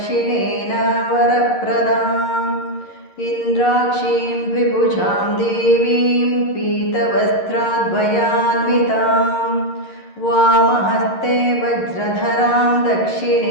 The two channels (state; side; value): late; right; 11 ms